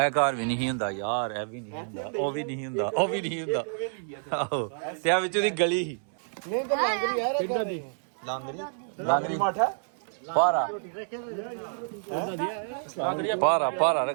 ਘਰ ਵੀ ਨਹੀਂ ਹੁੰਦਾ ਯਾਰ ਇਹ ਵੀ ਨਹੀਂ ਹੁੰਦਾ ਉਹ ਵੀ ਨਹੀਂ ਹੁੰਦਾ ਉਹ ਵੀ ਨਹੀਂ ਹੁੰਦਾ ਆਹੋ ਤੇ ਆ ਵਿੱਚ ਉਹਦੀ ਗਲੀ ਸੀ ਲਾਂਗਰੀ माठा ਪਾਰਾ ਪਾਰਾ ਪਾਰਾ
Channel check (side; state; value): left; silent; 59 dB below the other